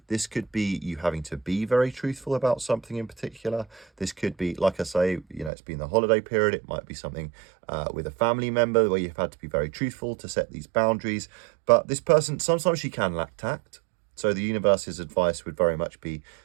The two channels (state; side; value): drops out; left; at 5.5 s